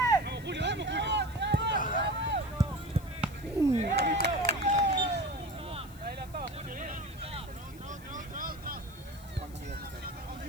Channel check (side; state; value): left; noise; hiss, 22 dB below the sound